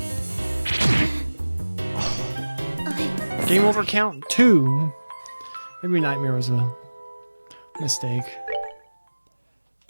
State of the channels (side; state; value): both; inverted; correlation -1.00